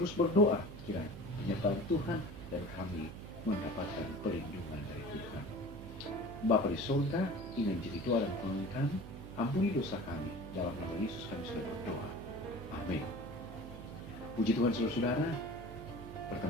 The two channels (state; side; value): noise; right; hum, 12 dB below the sound